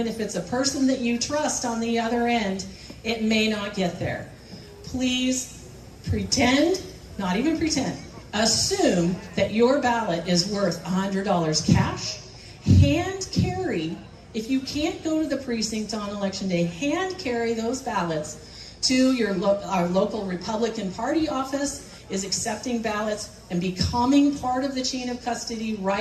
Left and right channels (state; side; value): identical; both; correlation 1.00